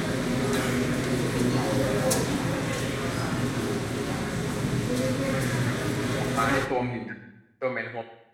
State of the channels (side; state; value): both; identical; correlation 1.00